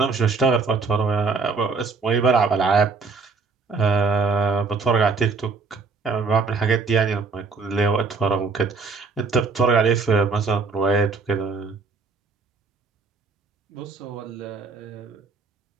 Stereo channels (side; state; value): left; quieter; 4.5 dB